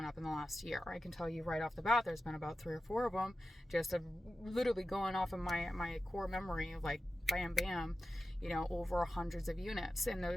up in the last year? I can tell you right off the bat, there's been about 3 or 4 of them, just literally going off of my core memory of like bam, bam, you know, over hundreds of units in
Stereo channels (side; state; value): both; normal; correlation 0.93